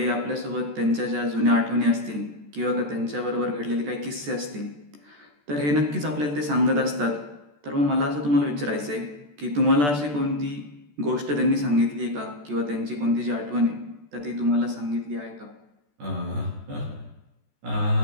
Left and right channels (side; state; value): left; late; 14 ms